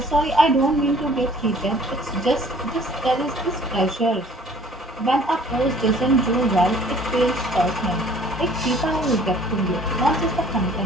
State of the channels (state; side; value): normal; both; correlation 0.54